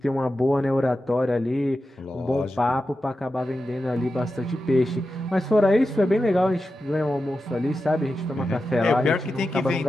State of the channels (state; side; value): normal; both; correlation 0.91